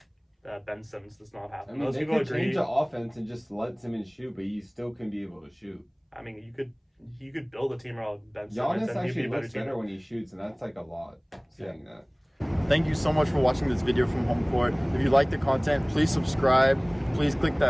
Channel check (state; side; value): identical; both; correlation 1.00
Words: That Ben Simmons does not have. I mean, they could change the offense and just let Simmons shoot, but he still can be able to shoot. I mean, you could build a team around Ben Simmons. Giannis actually looks better when he shoots, and that's like a lot saying that. Thank you so much for watching this video from Homecourt. If you like the content, please subscribe. Please click